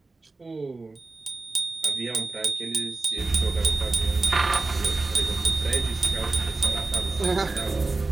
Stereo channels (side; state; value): left; quieter; 3.5 dB